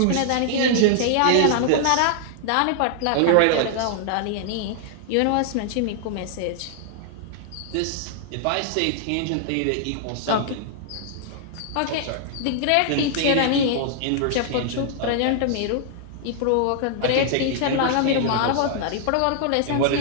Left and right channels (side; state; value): both; different; correlation 0.00